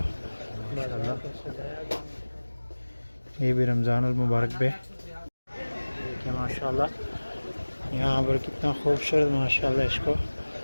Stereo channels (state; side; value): inverted; both; correlation -1.00